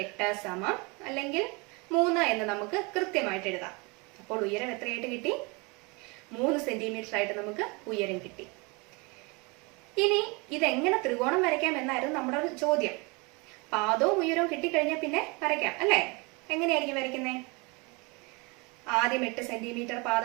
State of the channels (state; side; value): quieter; left; 28.4 dB